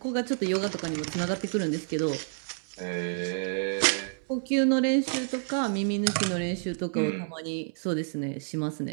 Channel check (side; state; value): left; silent; 59 dB below the other